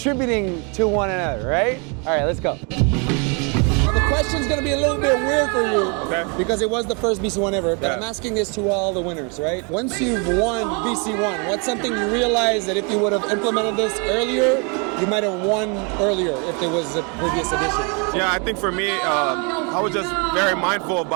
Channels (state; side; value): quieter; left; 34.5 dB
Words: to one another, right? All right, let's go. Now the question's gonna be a little bit weird for you, because it was the first BC1 ever, but I'm asking this to all the winners, right? Once you've won BC1, what's something you realize that if you would have implemented this earlier, you might have won earlier if there was a previous edition? Yeah, I think for me, I was just very mindful